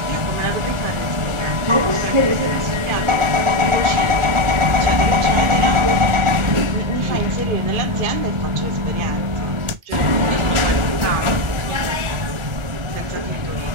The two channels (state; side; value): late; left; 1.4 ms